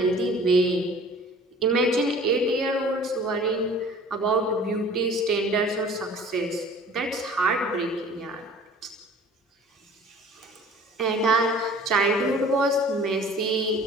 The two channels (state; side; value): normal; both; correlation 0.47